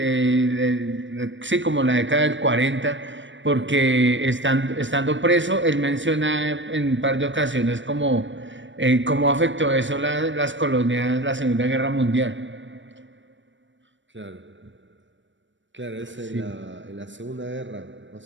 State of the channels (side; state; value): left; late; 0.54 ms